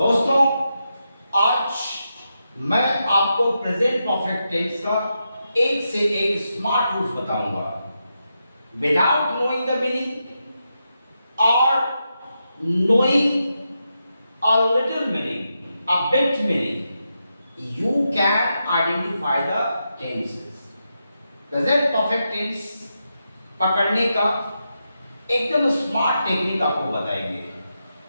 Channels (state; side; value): inverted; both; correlation -0.86